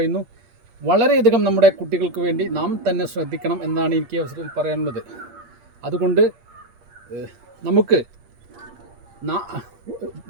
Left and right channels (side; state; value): left; late; 8.8 ms